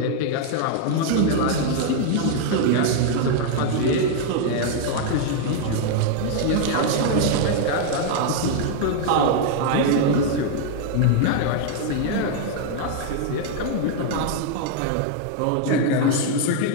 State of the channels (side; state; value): both; different; correlation 0.00